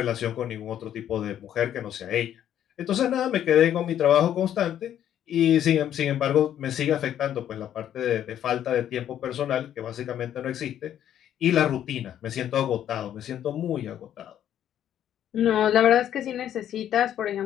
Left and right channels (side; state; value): right; quieter; 10.6 dB